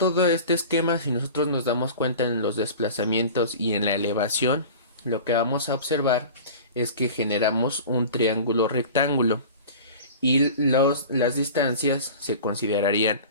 este esquema, si nosotros nos damos cuenta en los desplazamientos y en la elevación, lo que vamos a observar es que generamos un triángulo rectángulo y las distancias se considerarían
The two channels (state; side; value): inverted; both; correlation -0.37